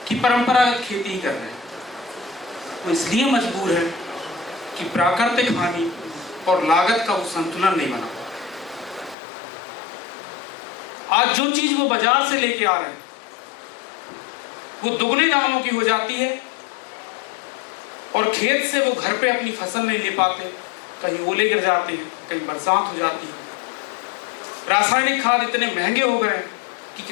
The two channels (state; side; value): drops out; right; at 9.2 s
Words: कि परंपरागत खेती ही कर रहे हैं? वो इसलिए मजबूर है कि प्राकृतिक हानि और लागत का वो संतुलन नहीं बना। आज जो चीज वो बाजार से लेके आ रहे हैं वो दुगने दामों की हो जाती है, और खेत से वो घर पे अपनी फसल नहीं ले पाते, कहीं ओले गिर जाते हैं, कहीं बरसात हो जाती है। रासायनिक खाद इतने महंगे हो गए कि